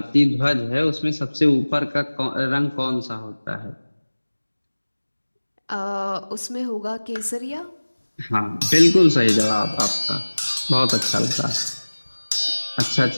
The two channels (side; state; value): both; inverted; correlation -1.00